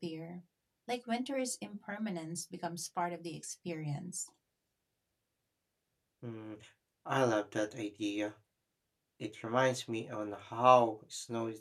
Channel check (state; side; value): identical; both; correlation 1.00